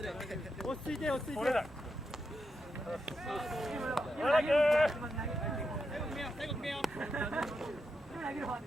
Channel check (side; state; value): both; normal; correlation 0.85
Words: 落ち着いて落ち着いて。最後決めよう。